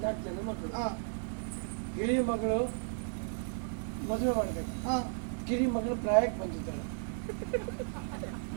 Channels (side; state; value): left; silent; digital silence